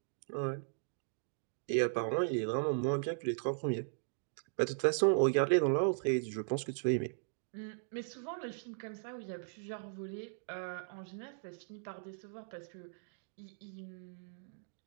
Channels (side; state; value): left; silent; digital silence